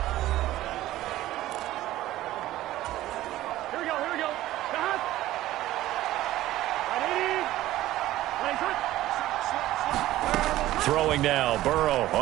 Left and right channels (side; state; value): left; quieter; 15.2 dB